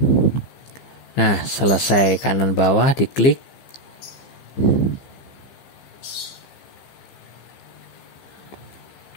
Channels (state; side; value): late; right; 15 ms